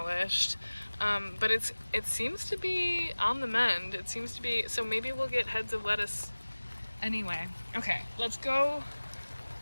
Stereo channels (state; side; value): inverted; both; correlation -1.00